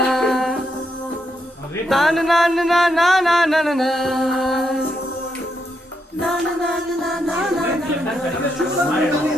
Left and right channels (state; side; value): normal; both; correlation 0.80